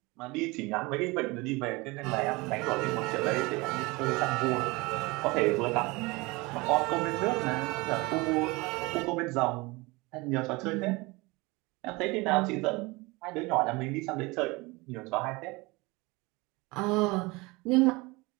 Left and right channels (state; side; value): quieter; left; 24.2 dB